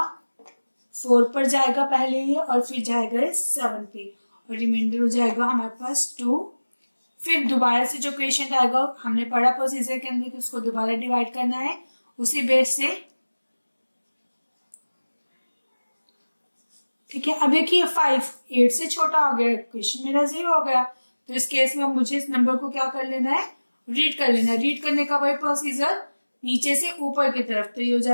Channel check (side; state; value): both; inverted; correlation -1.00